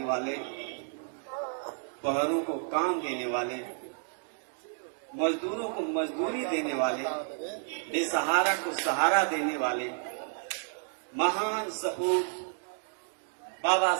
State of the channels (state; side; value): silent; left; digital silence